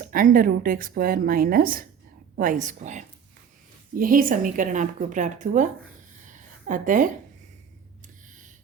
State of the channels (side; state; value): left; quieter; 7.5 dB